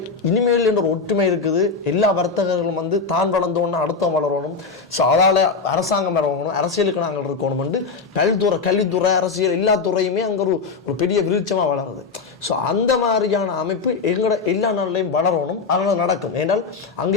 இனிமேல் என்ற ஒரு ஒற்றுமை இருக்குது. எல்லா வர்த்தகர்களும் வந்து தான் வளர்ந்தோன்னு அடுத்தவன் வளரணும். ஸோ அதால் அரசாங்கம் வரணும், அரசியலுக்கு நாங்கள் இருக்கணும்னு பல்துறை கல்வித்துறை அரசியல் எல்லா துறையுமே அங்கே ஒரு பெரிய விருட்சமாக வளருது. ஸோ அந்த மாதிரியான அமைப்பு எங்களோட எல்லா நாள்லையும் வளரணும். அதனால் நடக்கும். ஏன்னால் அங்கே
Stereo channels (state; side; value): quieter; right; 4.8 dB